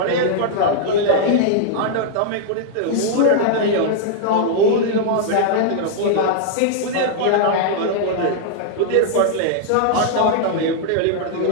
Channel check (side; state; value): both; different; correlation -0.01